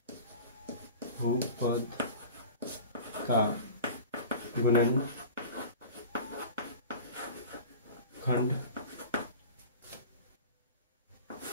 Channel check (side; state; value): both; inverted; correlation -0.38